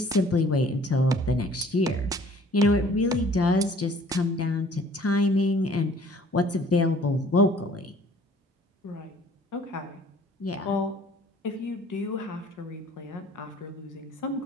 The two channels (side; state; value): both; normal; correlation 0.54